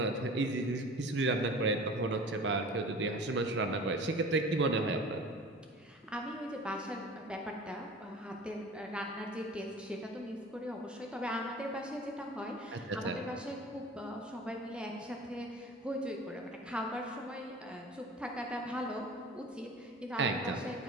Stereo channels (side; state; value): both; normal; correlation 0.41